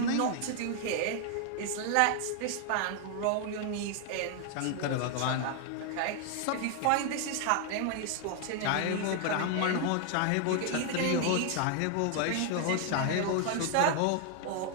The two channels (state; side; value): different; both; correlation 0.00